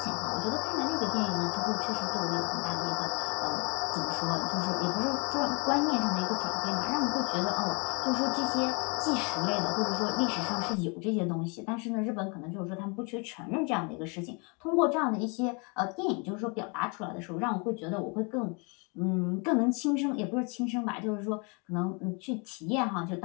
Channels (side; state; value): right; quieter; 32.9 dB